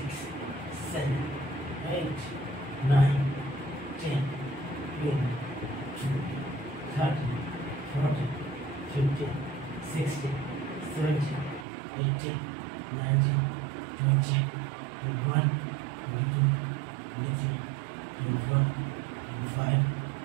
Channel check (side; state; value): left; drops out; at 11.7 s